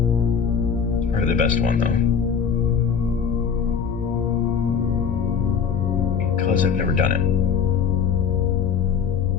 It's probably the best one though, because I've never done it.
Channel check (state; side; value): quieter; right; 6.8 dB